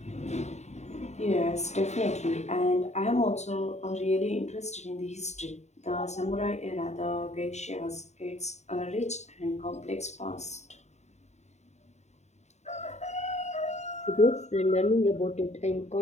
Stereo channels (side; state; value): right; late; 0.33 ms